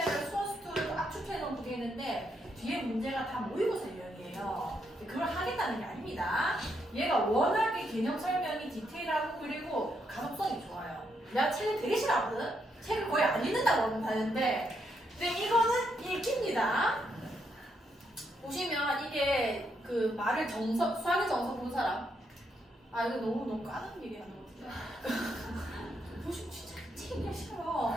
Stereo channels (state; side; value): normal; both; correlation 0.78